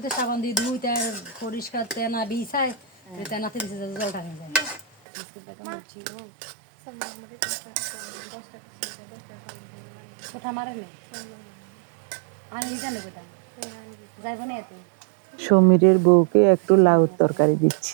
সাবান দিয়ে ধুই তার পরিষ্কার তেনা বিছায় তেনাতে দিছে জলটা হয়ে যায় বিস্কুট বেগুন মুছি কোঠা মারে নেই আনি জানে বেটা যাইব না এতে সমীরের বউকে একটু লাউ তরকারি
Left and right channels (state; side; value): drops out; left; at 4.9 s